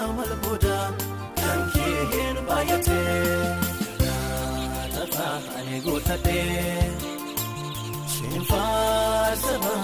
malboda kanke bayate Tafa ane gutate Sinfaarsa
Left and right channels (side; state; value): both; identical; correlation 1.00